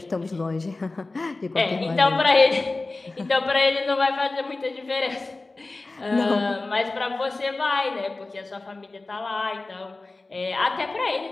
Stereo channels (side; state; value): right; quieter; 3.3 dB